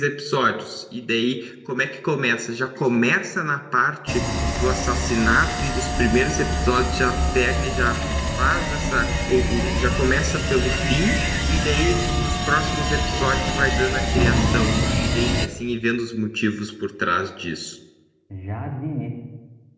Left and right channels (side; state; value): both; identical; correlation 1.00